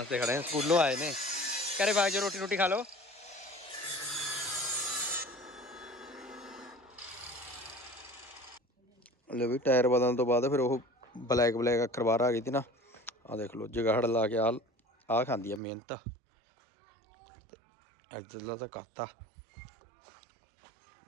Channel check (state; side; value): drops out; left; at 15.6 s